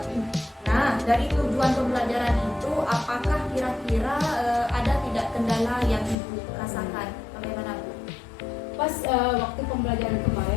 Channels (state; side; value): drops out; right; at 6.2 s